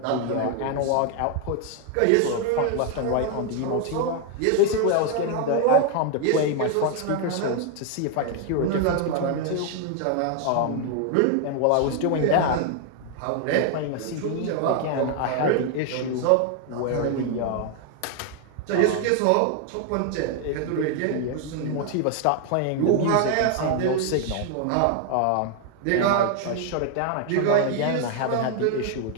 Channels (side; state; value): both; different; correlation 0.00